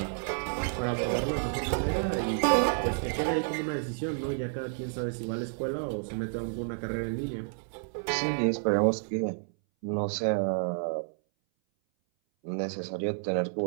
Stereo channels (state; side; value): silent; left; 58 dB below the other